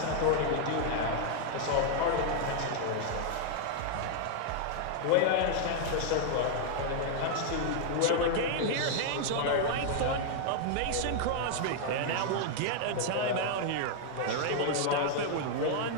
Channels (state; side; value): different; both; correlation -0.01